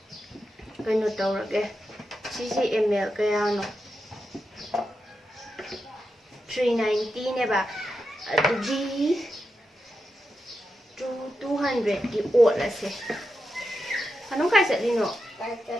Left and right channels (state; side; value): normal; both; correlation 0.88